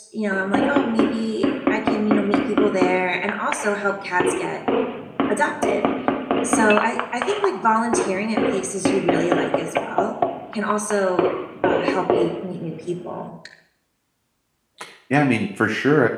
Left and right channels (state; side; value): identical; both; correlation 1.00